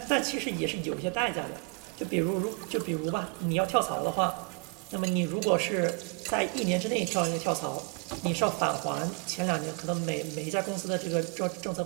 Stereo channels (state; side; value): quieter; left; 33.5 dB